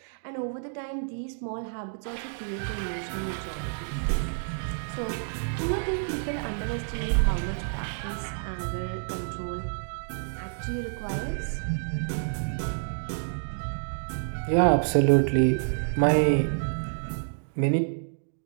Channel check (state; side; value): silent; left; digital silence